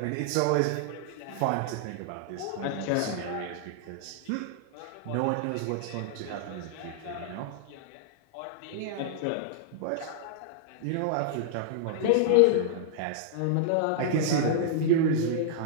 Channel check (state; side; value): different; both; correlation -0.01